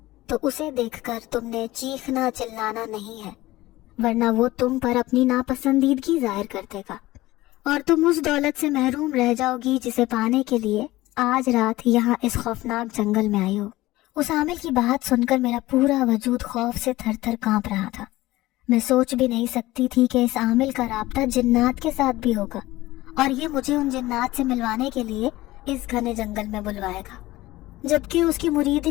تو اسے دیکھ کر تم نے چیخنا چلانا نہیں ہے، ورنہ وہ تم پر اپنی ناپسندیدگی ظاہر کر دے گا اور تم اس دولت سے محروم رہ جاؤ گی جسے پانے کے لیے آج رات یہاں اس خوفناک جنگل میں آئی ہو۔ اس عامل کی بات سن کر میرا پورا وجود خوف سے تھر تھر کانپ رہا تھا۔ میں سوچ بھی نہیں سکتی تھی کہ اس عامل کا رابطہ جنات کے ساتھ بھی ہوگا اور یہ مجھے ان جنات سے ملوانے کے لیے اس گھنے جنگل میں بلوائے گا، جبکہ اس کی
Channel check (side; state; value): right; quieter; 17.9 dB